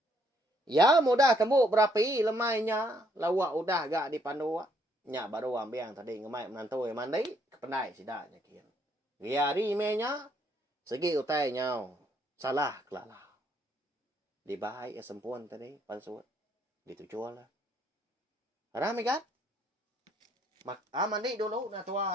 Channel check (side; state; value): both; normal; correlation 0.69